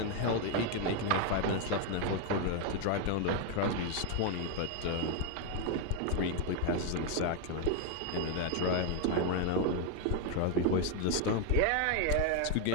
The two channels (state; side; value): different; both; correlation 0.01